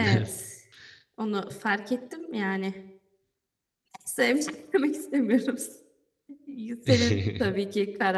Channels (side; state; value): both; identical; correlation 1.00